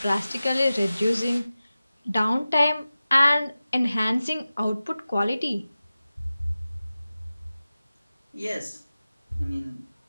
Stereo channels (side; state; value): both; inverted; correlation -0.96